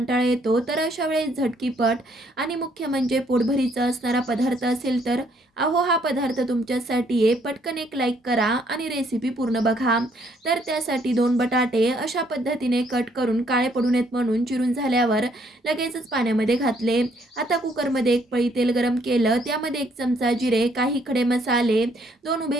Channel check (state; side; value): normal; both; correlation 0.67